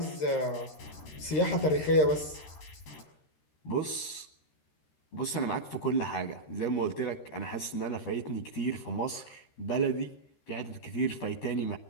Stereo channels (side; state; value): right; late; 13 ms